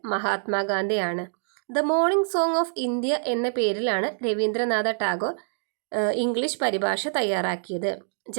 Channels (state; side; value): silent; left; digital silence